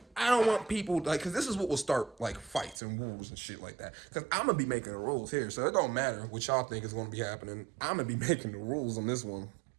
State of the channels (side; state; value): left; drops out; at 2.8 s